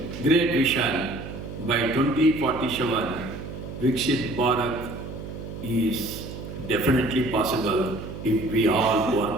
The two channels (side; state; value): right; noise; hum, 10 dB below the sound